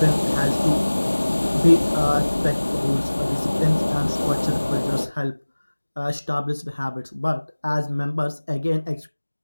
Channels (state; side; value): inverted; both; correlation -1.00